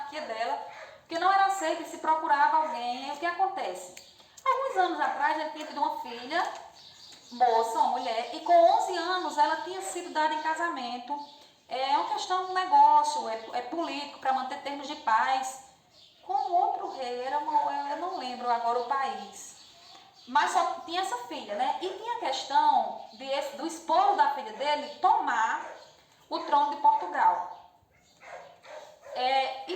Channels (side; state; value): both; identical; correlation 1.00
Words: dela, porque não era aceito e se procurava alguém. E o que acontece? Alguns anos atrás ele tinha tido uma filha, moça, uma mulher, e com 11 anos ela tinha sido dada em casamento. É uma questão de negócio, é político, para manter termos de paz. Com outro rei, eu não lembro agora o país. Mas só tinha essa filha, né? E tinha a questão do esposo da filha dele tomar o trono de Portugal. E